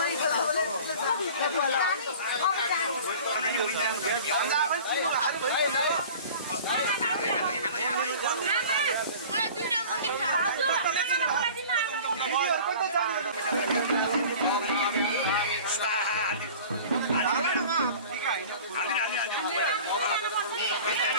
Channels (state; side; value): inverted; both; correlation -0.42